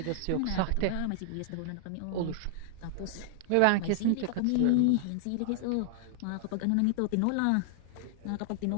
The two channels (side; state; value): both; different; correlation -0.01